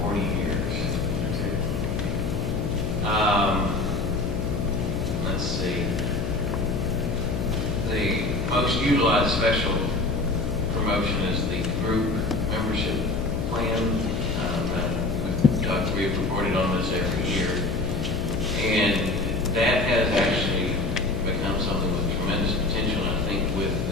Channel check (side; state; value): left; noise; hum, 2 dB below the sound